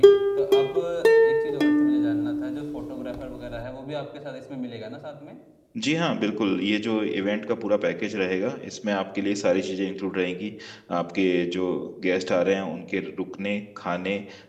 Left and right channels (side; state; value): both; identical; correlation 1.00